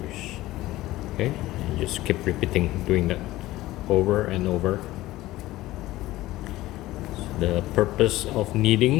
Okay, and just keep repeating, doing that over and over. So the purpose of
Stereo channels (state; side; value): quieter; right; 16.8 dB